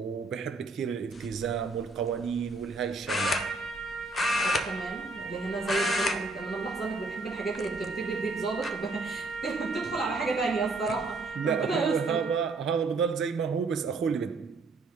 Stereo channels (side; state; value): left; quieter; 3.5 dB